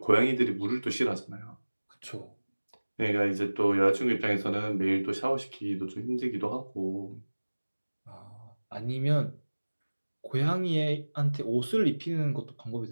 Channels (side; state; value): both; inverted; correlation -1.00